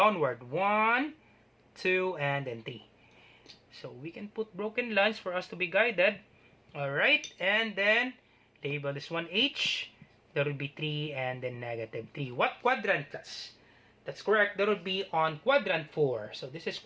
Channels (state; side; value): identical; both; correlation 1.00